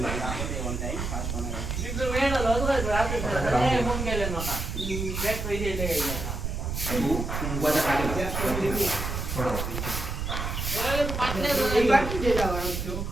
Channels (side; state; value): right; noise; rumble, 4 dB below the sound